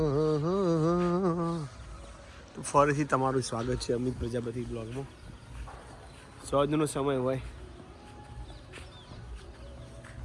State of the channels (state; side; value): identical; both; correlation 1.00